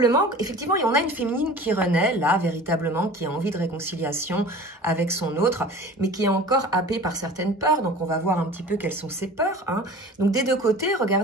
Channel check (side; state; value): both; normal; correlation 0.41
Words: effectivement, il y en a une féminine qui renaît, là, véritablement, qui a envie de réconciliation avec son autre, mais qui est encore happée par certaines peurs. Donc, on va voir un petit peu quelles sont ces peurs. Hein. Donc, des deux côtés,